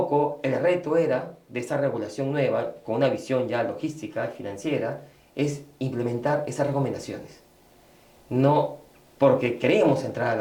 el reto era de esta regulación nueva, con una visión ya logística, financiera, es implementar esas recomendaciones. No porque queríamos entrar a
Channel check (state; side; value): identical; both; correlation 1.00